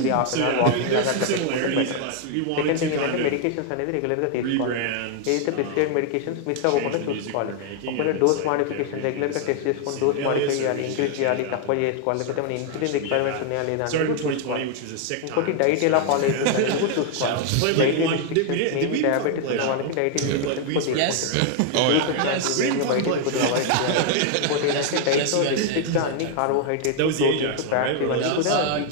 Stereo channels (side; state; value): both; different; correlation 0.00